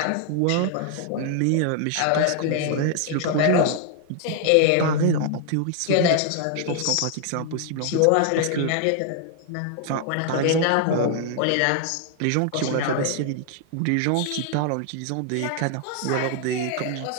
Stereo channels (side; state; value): both; different; correlation 0.00